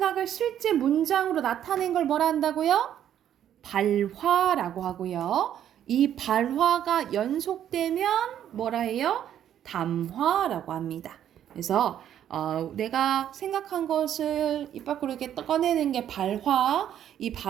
실제 문장으로 나타낸 걸 뭐라 한다고요? 발화라고 하고요. 이 발화가 연속되면 뭐라 해요? 담화라고 합니다. 그래서 내가 생각한 것을 입 밖으로 이렇게 꺼내는 게 발화, 이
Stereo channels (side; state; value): left; quieter; 10.4 dB